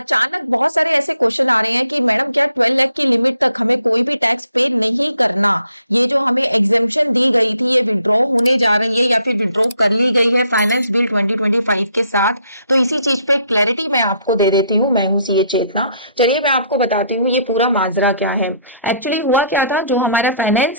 बहुत सारे ऐसे क्वेश्चन आ रहे हैं कि मैडम क्या 12 लाख की लिमिट तक हमें कोई भी टैक्स पे नहीं करना। ये जो हमें एग्जेम्पशन दी गई थी ये विड्रॉ होने जा रही है या फिर विड्रॉ कर ली गई है फाइनेंस बिल 2025 के साथ। तो इसी चीज पे क्लैरिटी मैं आपको दे देती हूँ। मैं हूँ सीए चेतना। चलिए मैं आपको बताती हूँ ये पूरा माजरा क्या है। एक्चुअली हुआ क्या था, जो हमारा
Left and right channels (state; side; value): inverted; both; correlation -0.68